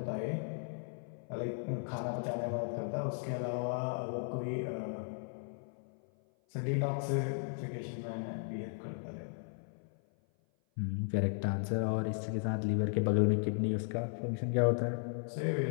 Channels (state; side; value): silent; right; 54 dB below the other